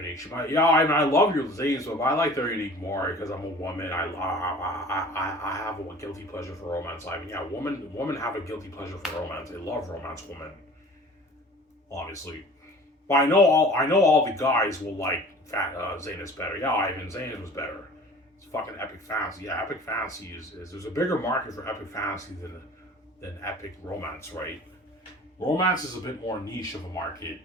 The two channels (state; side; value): normal; both; correlation 0.45